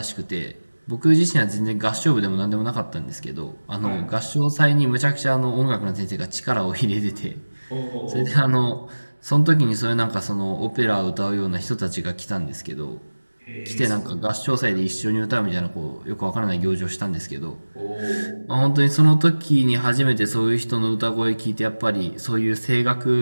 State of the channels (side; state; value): both; inverted; correlation -1.00